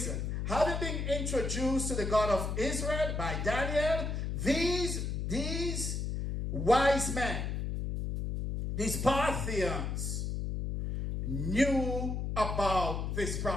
Having been introduced to the God of Israel by Daniel, these wise men these Parthians knew about this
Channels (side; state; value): left; noise; hum, 2 dB below the sound